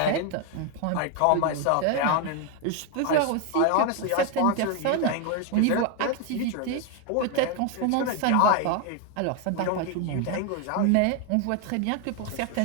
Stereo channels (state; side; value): different; both; correlation 0.01